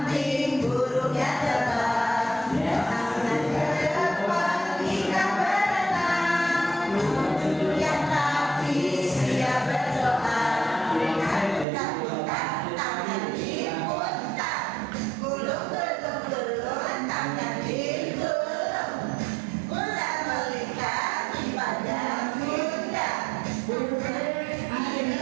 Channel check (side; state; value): left; drops out; at 11.7 s